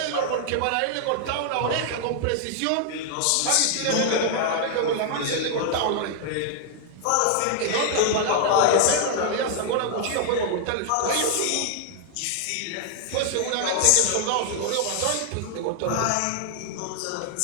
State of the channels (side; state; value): both; different; correlation 0.00